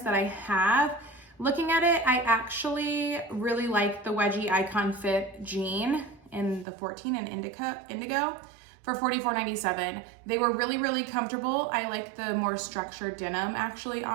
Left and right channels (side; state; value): left; drops out; at 6.7 s